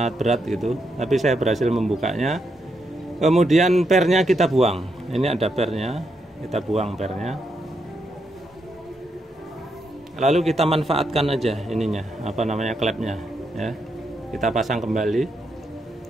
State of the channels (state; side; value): normal; both; correlation 0.81